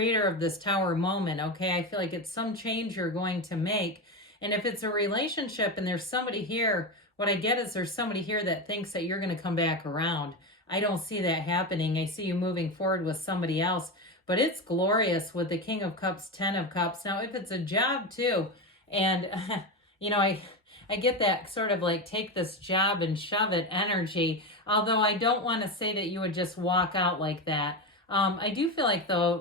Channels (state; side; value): normal; both; correlation 0.18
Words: of this Tower moment, okay? I feel like it's some change you're going to make. And if it's a relationship and there's somebody here, what I get is there's somebody here that thinks that you're going to come back around. I don't see that happening. I see you moving forward with somebody else. But it's glorious with the King of Cups, Ten of Cups. Now, if it's a job too, and, you know, I get that sort of like take this job and shove it energy, although I don't want to say that you would just walk out like that. I do feel like,